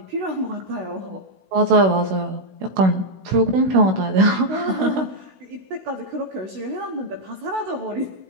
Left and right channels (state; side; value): late; left; 16 ms